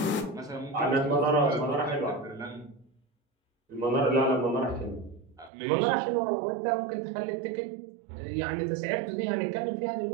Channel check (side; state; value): left; drops out; at 5.5 s